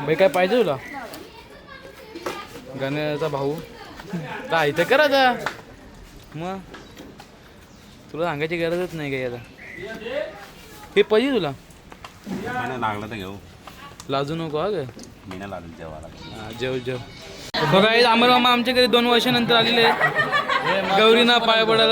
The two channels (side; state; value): both; identical; correlation 1.00